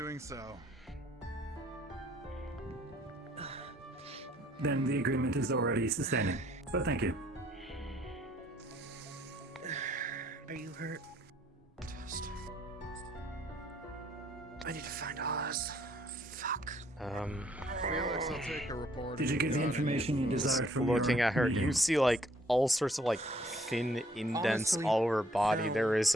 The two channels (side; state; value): both; normal; correlation 0.63